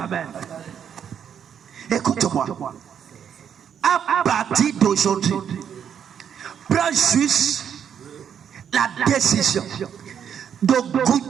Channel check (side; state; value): left; quieter; 8.3 dB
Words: Écoute-moi. À partir d'aujourd'hui, prends juste la décision de